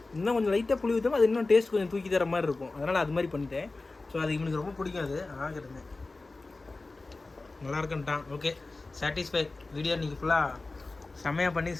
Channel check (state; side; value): quieter; right; 3.4 dB